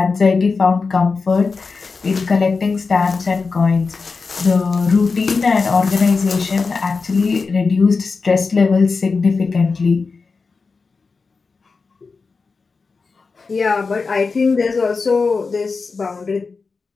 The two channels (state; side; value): quieter; right; 4.5 dB